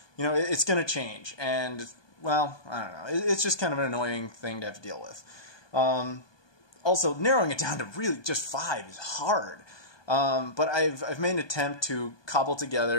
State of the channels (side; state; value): right; late; 1.2 ms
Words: You know, it's going to change, and, well, I don't know. It's just kind of an annoying thing to have to deal with. Also, narrowing it down to really just 5 is hard. But I've made an attempt to cobble